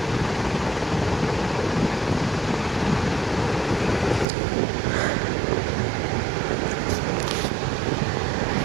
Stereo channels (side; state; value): left; drops out; at 4.2 s